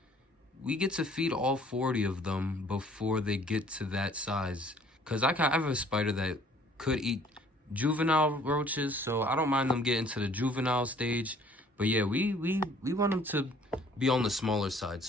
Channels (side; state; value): both; normal; correlation 0.57